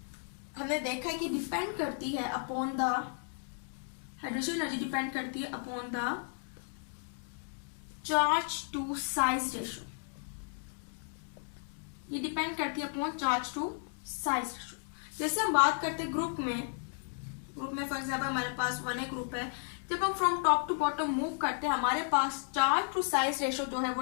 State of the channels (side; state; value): right; silent; 55 dB below the other